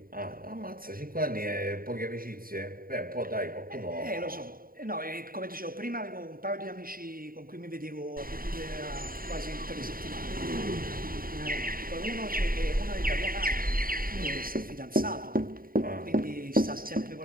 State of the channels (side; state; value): left; late; 0.42 ms